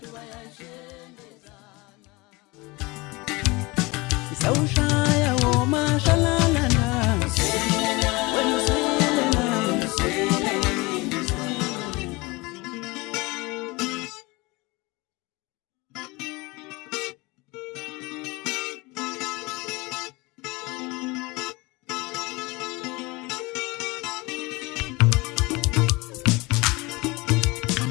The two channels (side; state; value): right; quieter; 24.1 dB